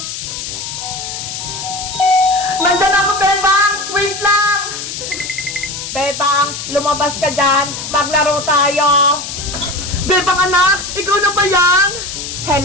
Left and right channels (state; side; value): noise; left; hiss, 7 dB below the sound